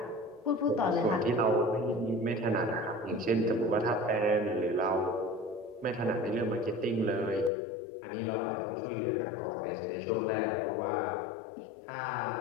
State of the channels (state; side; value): drops out; right; at 7.5 s